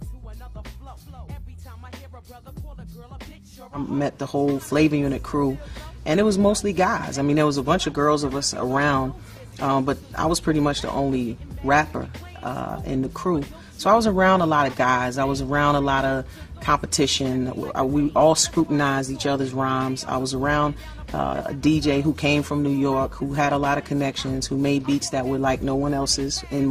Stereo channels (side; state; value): both; identical; correlation 1.00